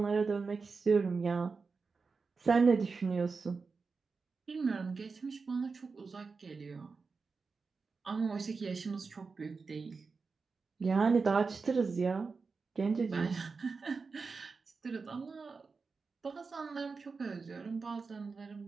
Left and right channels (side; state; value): left; quieter; 4.6 dB